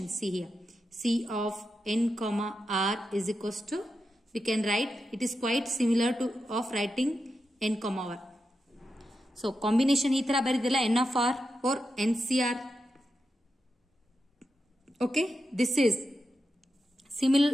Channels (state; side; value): normal; both; correlation 0.88